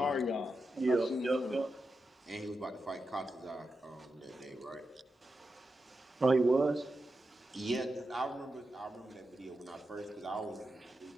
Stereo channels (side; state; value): both; normal; correlation 0.89